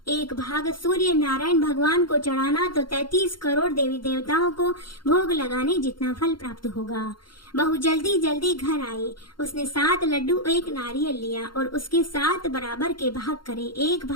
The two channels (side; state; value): right; late; 0.72 ms